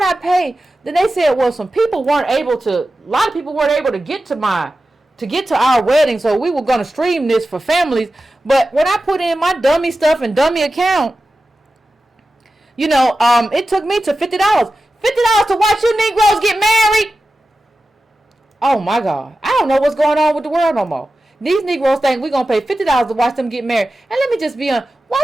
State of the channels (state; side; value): normal; both; correlation 0.93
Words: I pay? Then they said, well, a lot of people weren't able to get to our wedding, so we were going to stream this for families. But when I put in my dummy stuff and dummy account, it took me to $50. $50 to watch you Negroes get married? Oh, my God. I don't know what's going on with the world no more. These Negroes think we're going to pay $50 to watch them get married. And let me just be honest, why